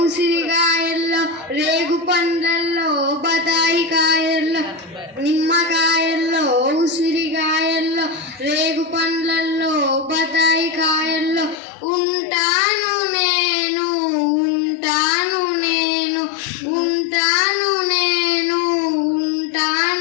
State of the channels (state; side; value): drops out; right; at 11.6 s